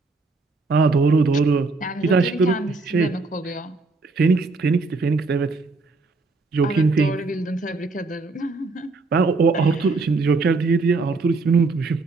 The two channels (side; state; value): left; quieter; 3.8 dB